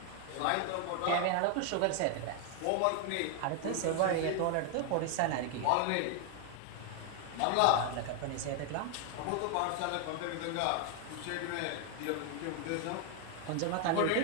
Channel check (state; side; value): different; both; correlation 0.00